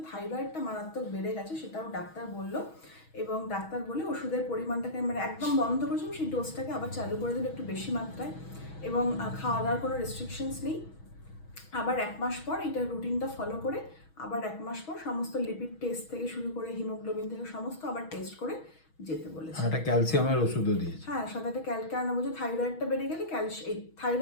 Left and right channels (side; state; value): right; late; 6.2 ms